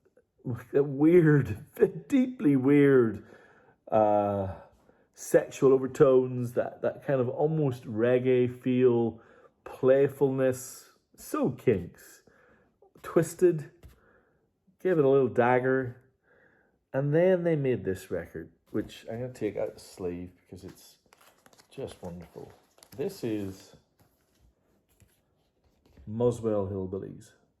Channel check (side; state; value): both; identical; correlation 1.00